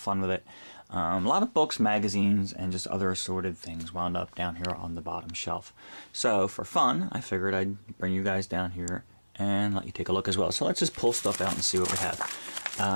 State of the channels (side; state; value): both; inverted; correlation -1.00